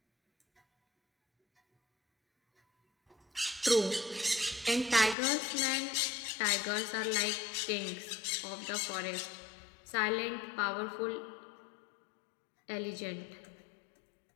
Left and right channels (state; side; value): drops out; right; at 5.2 s